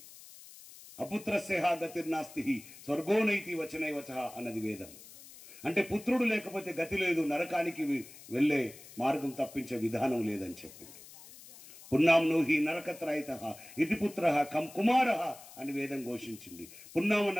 అపుత్రస్య గతిర్నాస్తి స్వర్గోనైతి వచనైవచ అన్నది వేదం. అంటే పుత్రుడు లేకపోతే గతి లేదు, నరకానికి వెళ్ళే మార్గం తప్పించే విధానం లేదని చెప్పింది. పున్నాంనో హి నరకత్రయిత ఇతి పుత్ర కం కుమార అని వేదం ఘోషించింది. పున్నామ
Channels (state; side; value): noise; left; hiss, 18 dB below the sound